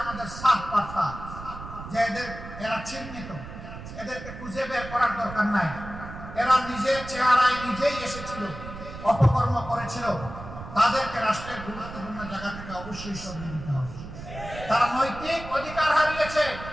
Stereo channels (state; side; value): noise; right; rumble, 12 dB below the sound